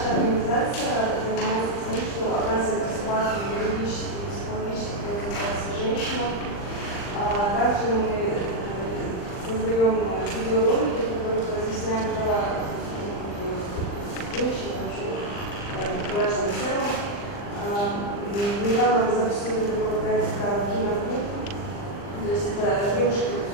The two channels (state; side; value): late; right; 39 ms